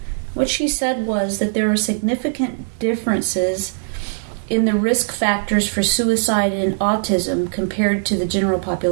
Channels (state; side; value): silent; left; digital silence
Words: What she said was that there are significant differences in the risk factors for suicide and autism compared to the general